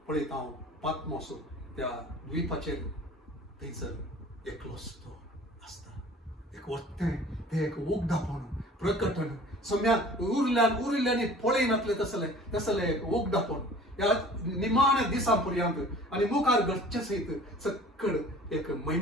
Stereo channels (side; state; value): both; normal; correlation 0.46